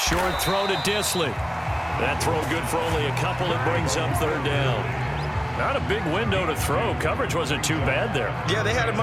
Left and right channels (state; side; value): identical; both; correlation 1.00